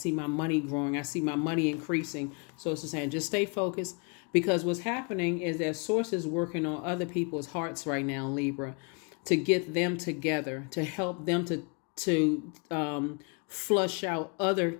my money growing. I see my money increasing. So it's saying, just stay focused, because what's happening is that Source is working on other people's hearts right now, Libra, to get them together, to help them to flush out other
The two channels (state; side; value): quieter; right; 34.8 dB